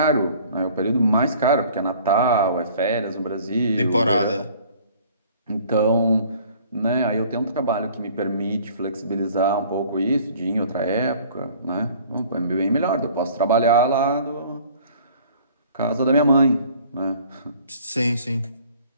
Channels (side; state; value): both; inverted; correlation -0.52